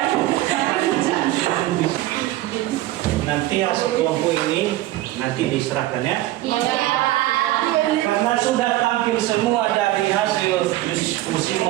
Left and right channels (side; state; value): left; quieter; 16.0 dB